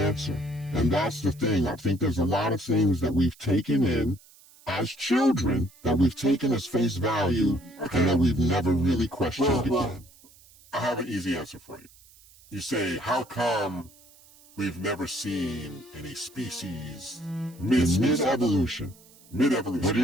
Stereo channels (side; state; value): right; noise; hiss, 26 dB below the sound